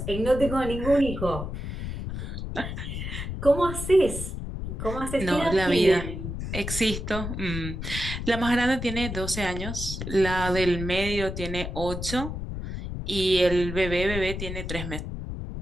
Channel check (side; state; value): left; noise; rumble, 6 dB below the sound